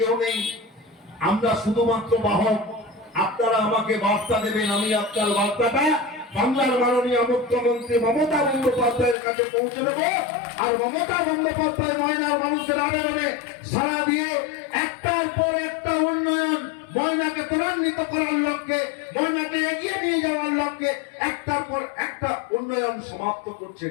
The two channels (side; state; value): right; drops out; at 9.2 s